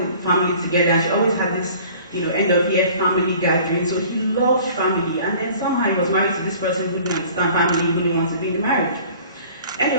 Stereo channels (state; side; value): inverted; both; correlation -0.48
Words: family together. She always had this, end of year family gathering. So he loved family. And then somehow he was married to this person who didn't understand family, who didn't want to be in the marriage.